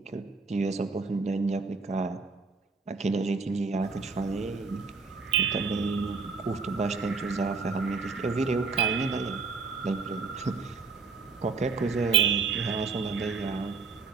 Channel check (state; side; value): quieter; left; 4.5 dB